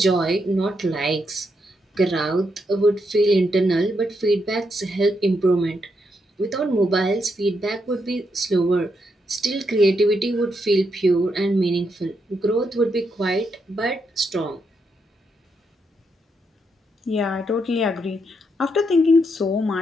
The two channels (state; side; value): normal; both; correlation 0.80